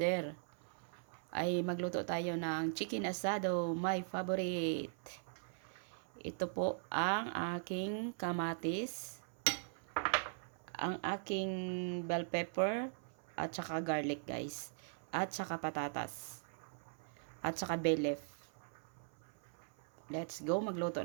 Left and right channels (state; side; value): silent; left; 51 dB below the other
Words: Ay magluto tayo ng chicken asado, my favorite. Ito po ang aking kamatis, ang aking bell pepper, at saka garlic guys, at saka patatas, at saka bay leaf. Let's go, magluto